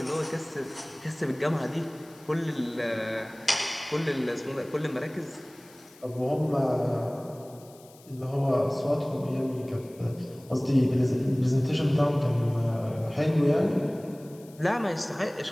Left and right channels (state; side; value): noise; left; hiss, 25 dB below the sound